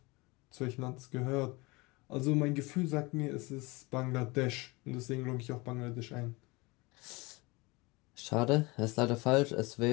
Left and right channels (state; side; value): quieter; right; 24.6 dB